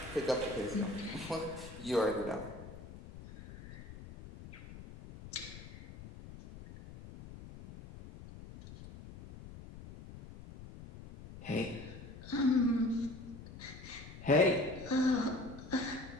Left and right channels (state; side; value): noise; left; rumble, 14 dB below the sound